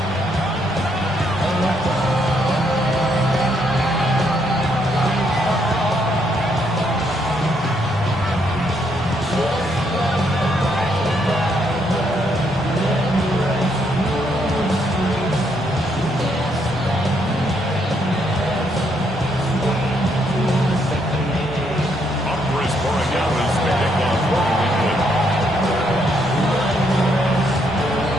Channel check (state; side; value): normal; both; correlation 0.74